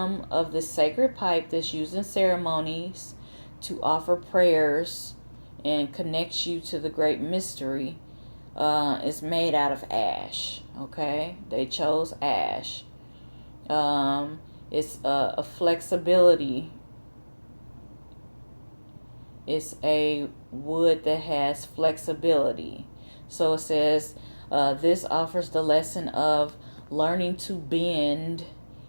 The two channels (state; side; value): inverted; both; correlation -1.00